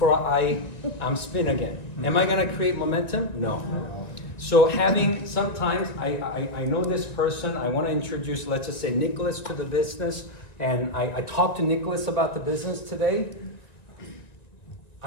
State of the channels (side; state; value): right; late; 1.9 ms